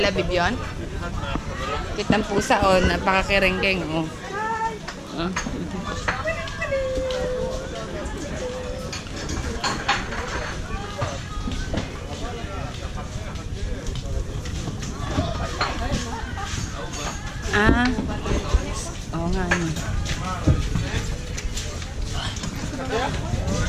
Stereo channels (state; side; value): identical; both; correlation 1.00